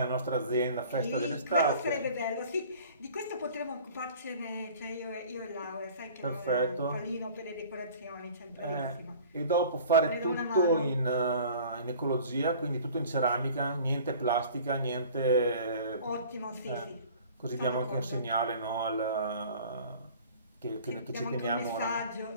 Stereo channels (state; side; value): inverted; both; correlation -0.46